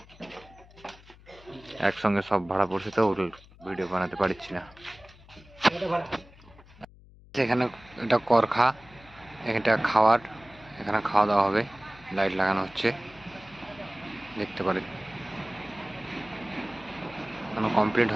একসঙ্গে সব ভাড়া পড়ছে তো ভিডিও বানাতে পারছি না। এখানে এটা করখা, এটা খাওয়ার, এখানে খাওয়া দাওয়া হবে। লাইট লাগানো হচ্ছে, দেখতে পারেন। এখনো কমপ্লিট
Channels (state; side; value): noise; left; hum, 23 dB below the sound